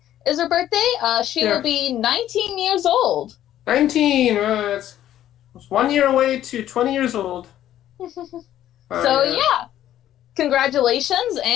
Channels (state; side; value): quieter; right; 12.1 dB